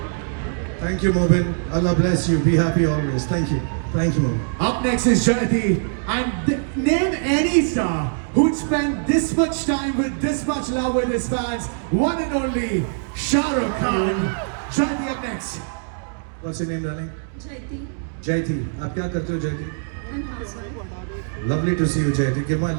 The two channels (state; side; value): silent; left; 64 dB below the other